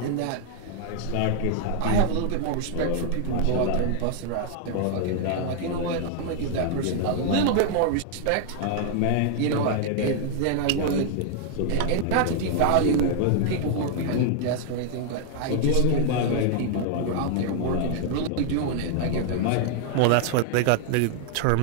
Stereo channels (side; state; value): both; different; correlation 0.00